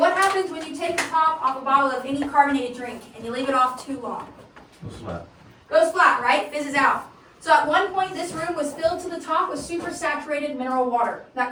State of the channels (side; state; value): both; identical; correlation 1.00